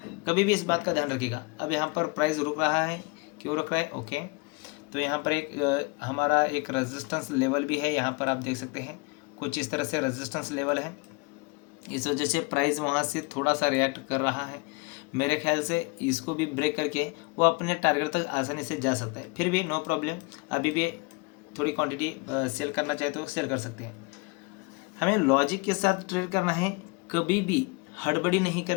कभी भी इस बात का ध्यान रखिएगा। अब यहाँ पर प्राइस रुक रहा है, क्यों रुक रहा है, ओके। तो यहाँ पर एक हमारा एक रेजिस्टेंस लेवल भी है, यहाँ पर आप देख सकते हैं कुछ इस तरह से रेजिस्टेंस लेवल है। इस वजह से प्राइस वहाँ से थोड़ा सा रिएक्ट कर रहा है। मेरे ख्याल से इसको भी ब्रेक करके वो अपने टारगेट तक आसानी से जा सकता है। फिर भी नो प्रॉब्लम, अभी भी थोड़ी क्वांटिटी सेल करना चाहे तो सेल कर सकते हैं। हमें लॉजिक के साथ ट्रेड करना है, कभी भी हड़बड़ी नहीं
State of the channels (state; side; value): quieter; right; 28.8 dB